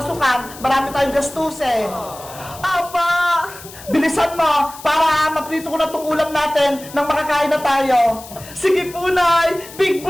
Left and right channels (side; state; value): left; noise; hiss, 17 dB below the sound